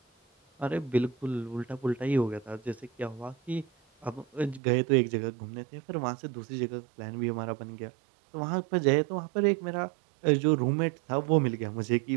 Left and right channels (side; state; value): left; drops out; at 4.6 s